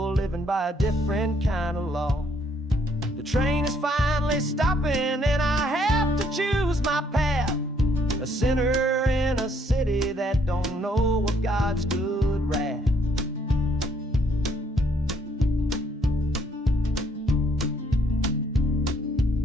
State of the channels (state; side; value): normal; both; correlation 0.68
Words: living by a different kind of law. The train is finally stopping and I have to choose my path, a sinner in a city that don't know what God's good wrath.